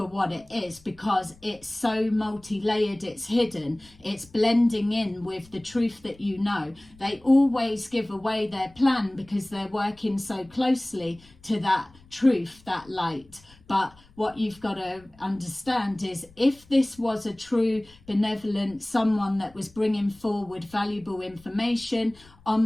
what it is, because it's so multi-layered, it's hidden, it's blending in with the truth that you know. They always give away their plan because they're working so closely to that truth, that light. But what you've got to understand is, if this was a true benevolent someone that was bringing forward valuable information,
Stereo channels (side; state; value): left; noise; rumble, 26 dB below the sound